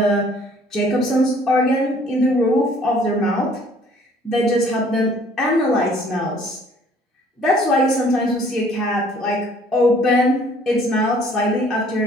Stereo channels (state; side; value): normal; both; correlation 0.57